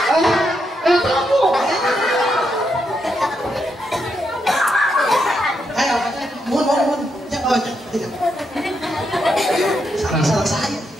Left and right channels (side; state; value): both; normal; correlation 0.81